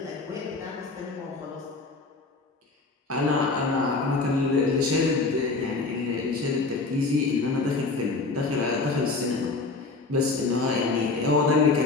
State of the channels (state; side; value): quieter; right; 3.7 dB